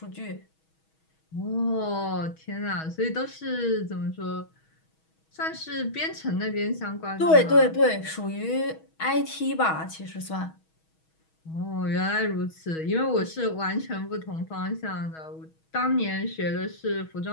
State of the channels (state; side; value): late; right; 6.3 ms